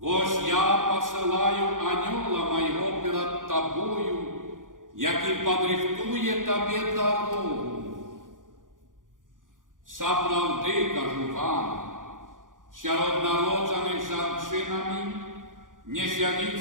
«Ось я посылаю анёла моего перед тобою, який подрихтує тобі дорогу». Справді, кажу вам, серед народжених жінками не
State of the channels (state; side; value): late; left; 0.89 ms